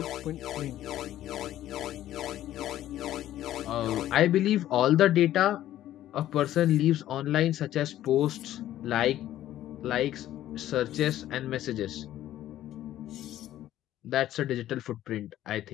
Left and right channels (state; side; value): quieter; right; 13.0 dB